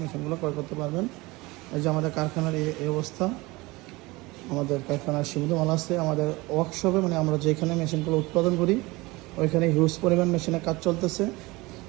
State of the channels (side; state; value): left; quieter; 22.4 dB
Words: মেশিনগুলো ক্রয় করতে পারবেন। এই যে আমাদের কারখানার এই অবস্থা। আমাদের কারখানার সীমিত মাল আছে। আমাদের ওয়ার্কশপে মানে আমরা যেখানে মেশিনগুলো উৎপাদন করি ওইখানে হিউজ পরিমাণ মেশিনের কাজ চলতেছে,